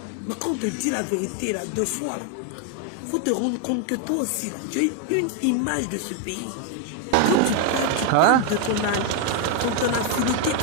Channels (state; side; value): different; both; correlation 0.01